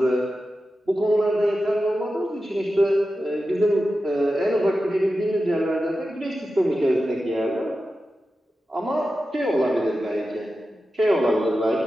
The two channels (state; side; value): normal; both; correlation 0.92